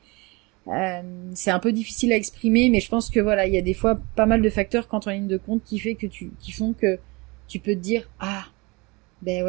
c'est un peu difficile à exprimer, mais je pense que voilà, il y a des fois pas mal de facteurs quand on ligne de compte qui font que tu peux te dire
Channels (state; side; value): quieter; left; 26.1 dB